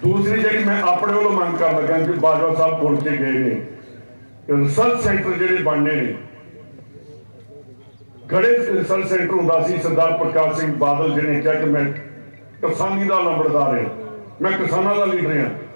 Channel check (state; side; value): inverted; both; correlation -1.00